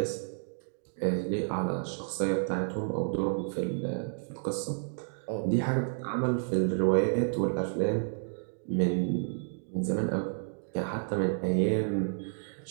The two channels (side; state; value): left; silent; digital silence